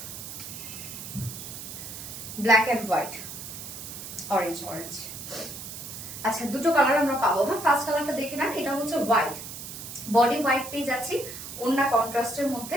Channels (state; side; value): noise; right; hiss, 10 dB below the sound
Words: Black and white, orange orange. আচ্ছা দুটো কালার আমরা পাবো। হ্যাঁ ফার্স্ট কালারটা দেখে নেন, এটা হচ্ছে হোয়াইট, বডি হোয়াইট পেয়ে যাচ্ছি, ওন্না কন্ট্রাস্টের মধ্যে,